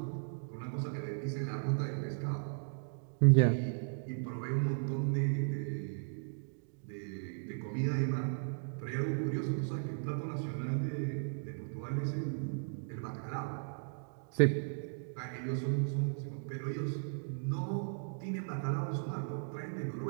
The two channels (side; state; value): left; silent; digital silence